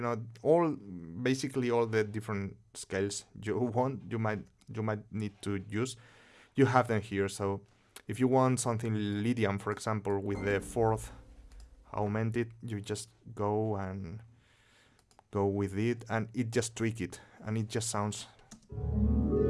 know, basically all the different scales you might need to use. You have them here. So if you want something Lydian, for example, with the fourth augmented, you just go with it, and it just tweak it, and it just sounds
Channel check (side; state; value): both; identical; correlation 1.00